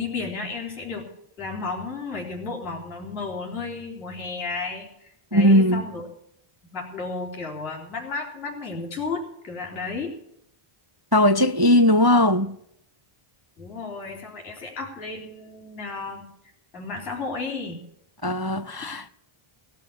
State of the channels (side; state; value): left; late; 1.1 ms